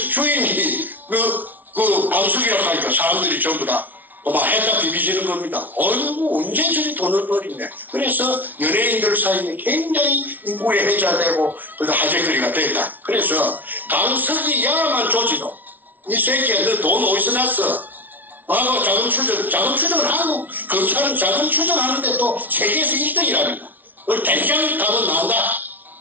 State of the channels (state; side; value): late; left; 0.082 ms